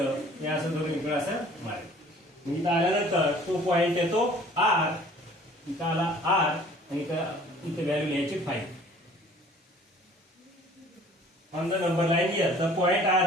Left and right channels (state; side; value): normal; both; correlation 0.52